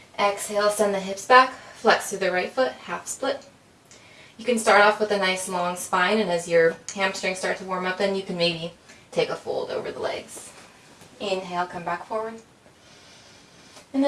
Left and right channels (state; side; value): identical; both; correlation 1.00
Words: Exhale, send the hips back, flex through the right foot, half split. You can start off with a nice long spine, and as your hamstrings start to warm up, then you can maybe take a fold over the legs. Inhale, come back forward. And